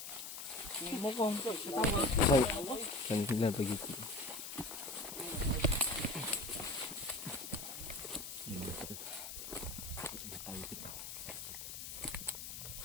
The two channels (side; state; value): left; noise; hiss, 8 dB below the sound